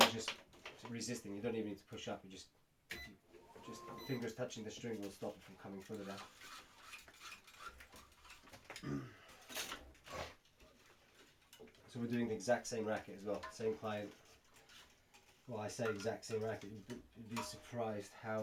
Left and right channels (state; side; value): identical; both; correlation 1.00